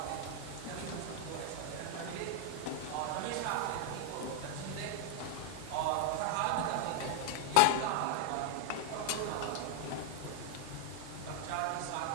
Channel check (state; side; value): different; both; correlation 0.00